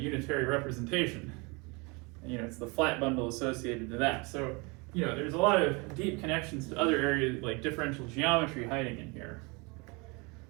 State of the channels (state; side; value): quieter; left; 28.7 dB